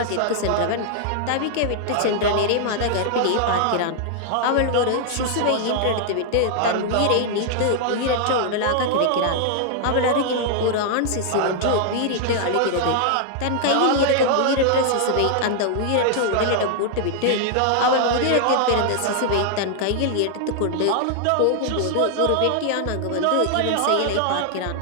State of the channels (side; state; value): both; different; correlation 0.00